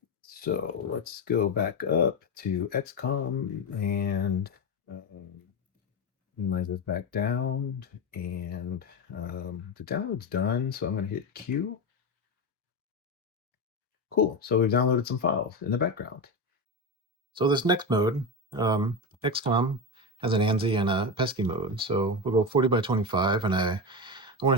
so let's go back up to XCOMM and minimize this back down. And the download's done, so I'm going to hit Q. Cool, so we've downloaded some files in the background. So this next mode, XCOMM has an ANSI and a PETSCII mode. So we'll go 40 by 25, and I want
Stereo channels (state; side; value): normal; both; correlation 0.16